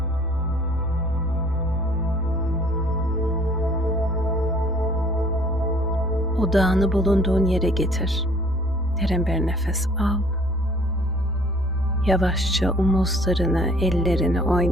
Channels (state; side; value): normal; both; correlation 0.55